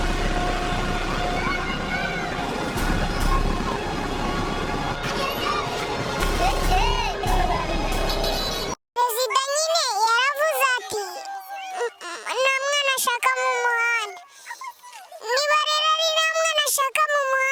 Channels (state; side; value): identical; both; correlation 1.00